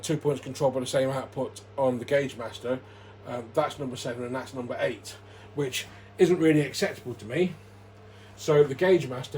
points controlled by the same output on the Gaugemaster, that's number 7 and that's number 8, which isn't really acceptable to me. So the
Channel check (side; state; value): both; identical; correlation 1.00